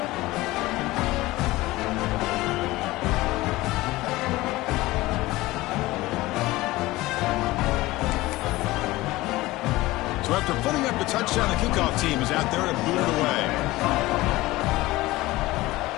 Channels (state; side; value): quieter; right; 18.9 dB